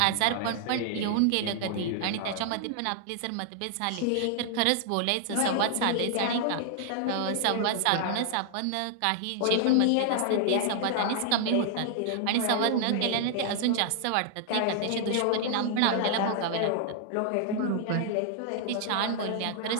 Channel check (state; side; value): different; both; correlation 0.00